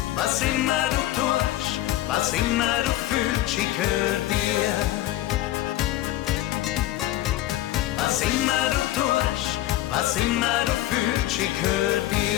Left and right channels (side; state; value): right; quieter; 14.9 dB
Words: Was immer du tust, was immer du fühlst, ich gehör dir. Was immer du tust, was immer du fühlst, ich gehör